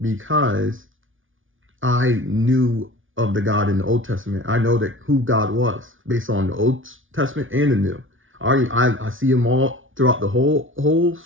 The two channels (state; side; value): late; left; 0.57 ms